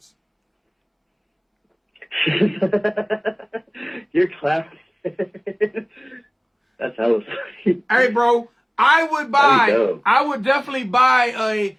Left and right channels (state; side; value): identical; both; correlation 1.00